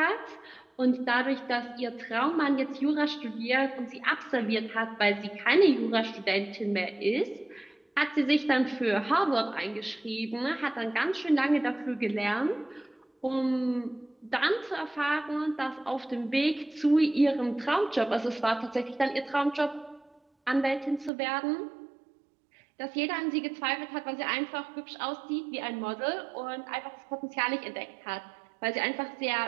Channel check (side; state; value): left; drops out; at 21.1 s